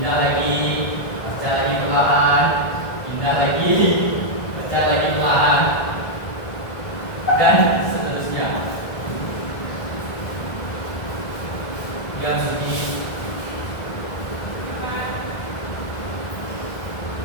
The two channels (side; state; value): right; late; 1.7 ms